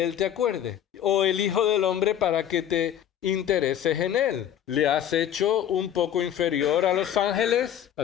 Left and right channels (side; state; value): right; quieter; 10.2 dB